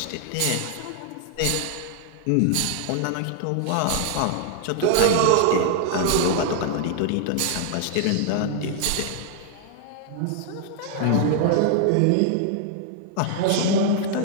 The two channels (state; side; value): different; both; correlation 0.00